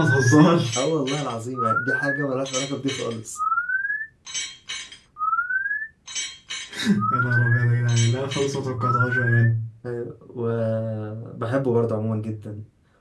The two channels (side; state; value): both; identical; correlation 1.00